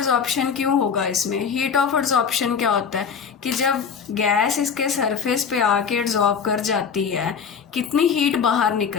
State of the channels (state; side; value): quieter; right; 6.5 dB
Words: क्यों होगा इसमें? हीट ऑफ एड्सॉर्प्शन क्या होता है कि जब गैस इसके सरफेस पे आके एड्सॉर्ब कर जाती है, कितनी हीट बाहर